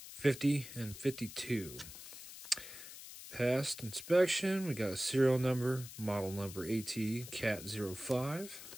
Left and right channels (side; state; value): left; noise; hiss, 13 dB below the sound